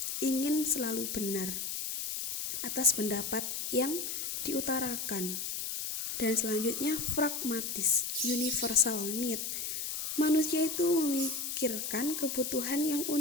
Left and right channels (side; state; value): left; noise; hiss, 3 dB below the sound